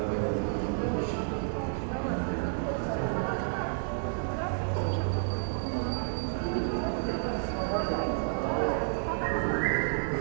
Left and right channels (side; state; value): left; silent; digital silence